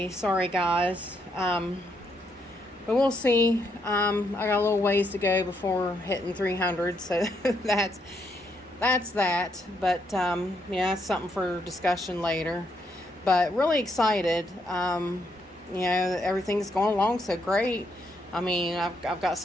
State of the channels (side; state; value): both; normal; correlation 0.76